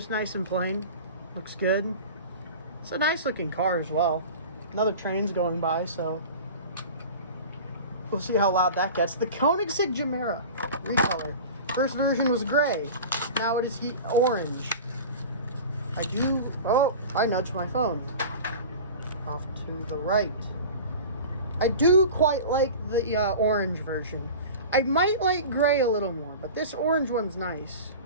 nice and plain. Looks good. It's a nice looking car as well. Another train's going by, so we'll see how loud that gets. The Koenigsegg Gemera Recolor. First version was gray. Now it is orange. I nudged my phone. Off to the right. I do quite like the orange version. I might like gray a little more, but this orange one's nice.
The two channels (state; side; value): inverted; both; correlation -0.35